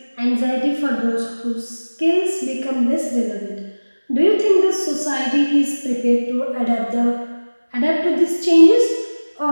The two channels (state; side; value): inverted; both; correlation -1.00